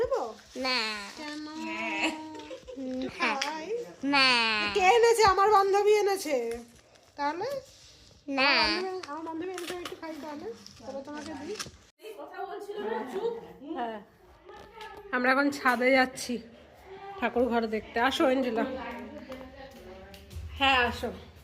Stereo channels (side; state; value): both; identical; correlation 1.00